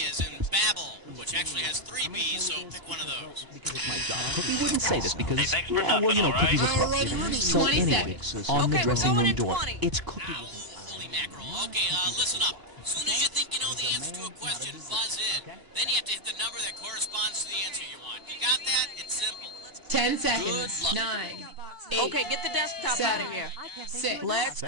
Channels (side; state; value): left; late; 1.0 ms